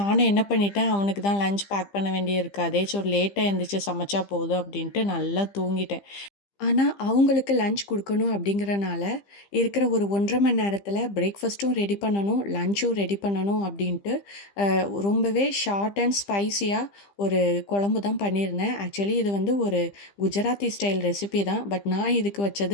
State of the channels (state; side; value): late; right; 15 ms